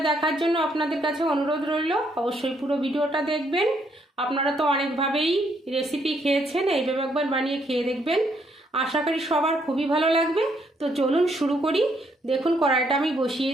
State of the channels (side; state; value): both; normal; correlation 0.72